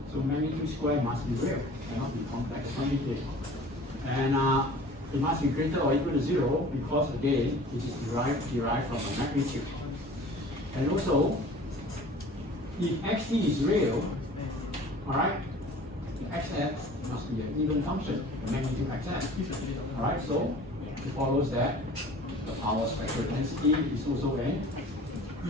So magnitude square must be real, cannot be complex quantity. And it must be greater or equal to 0 because again, it is derived from a magnitude. And also, if xt is real, all right, the xf must be an even function, the magnitude xf. All right, so it follows that the power spectral density is also an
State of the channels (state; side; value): normal; both; correlation 0.45